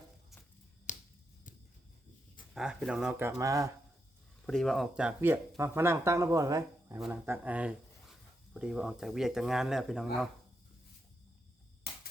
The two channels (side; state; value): both; normal; correlation 0.83